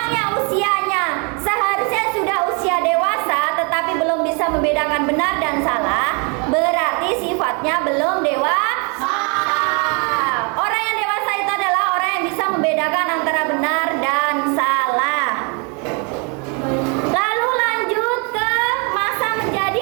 yang usianya seharusnya sudah usia dewasa tetapi belum bisa membedakan benar dan salah, berarti sifatnya belum dewasa.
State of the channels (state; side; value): quieter; left; 34.4 dB